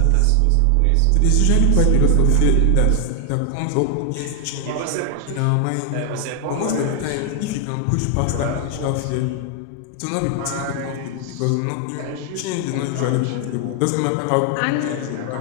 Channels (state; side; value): different; both; correlation 0.00